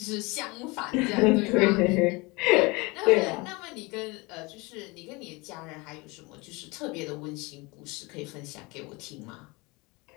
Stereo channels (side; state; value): right; quieter; 25.5 dB